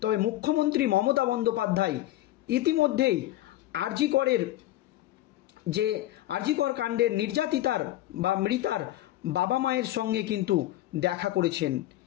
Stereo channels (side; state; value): right; quieter; 15.1 dB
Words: তবে মুখ্যমন্ত্রী মমতা বন্দ্যোপাধ্যায় ইতিমধ্যেই আর.জি. কর কাণ্ডের নির্যাতিতার বা মৃতার বাবা মায়ের সঙ্গে কিন্তু দেখা করেছেন